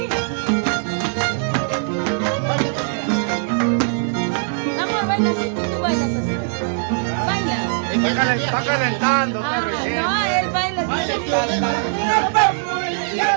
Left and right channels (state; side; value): silent; left; 65 dB below the other